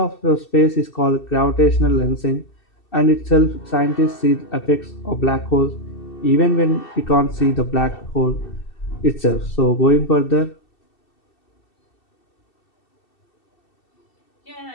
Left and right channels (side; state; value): right; late; 2.7 ms